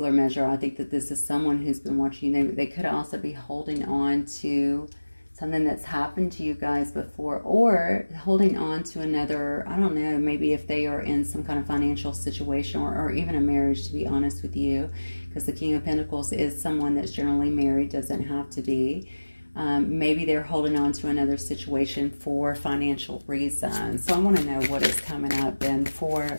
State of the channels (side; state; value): both; inverted; correlation -1.00